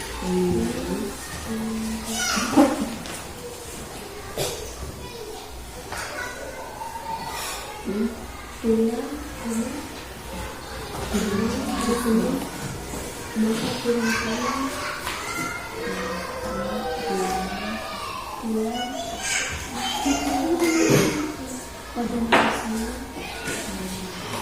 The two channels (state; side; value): identical; both; correlation 1.00